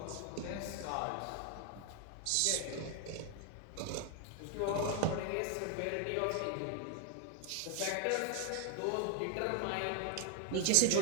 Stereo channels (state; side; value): different; both; correlation 0.01